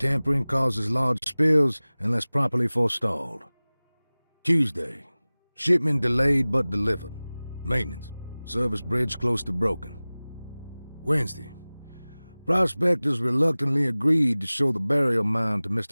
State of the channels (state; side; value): inverted; both; correlation -0.99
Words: causes large spills unless properly forestalled. Tuesday. Shipment delayed but delivered. Maintenance. Service bridge close to broken. Wednesday. Prospectors reluctantly agreed to show the burial mound to